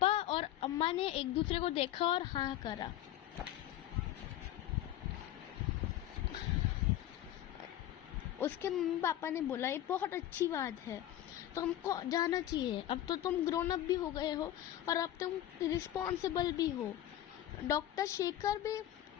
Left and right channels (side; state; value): right; quieter; 12.8 dB